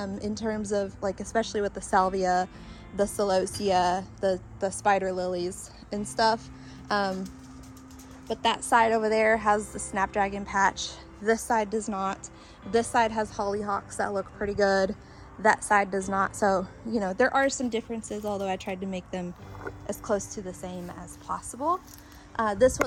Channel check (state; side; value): identical; both; correlation 1.00